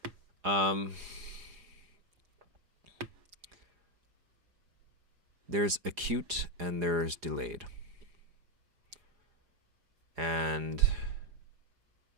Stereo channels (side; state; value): left; late; 4.9 ms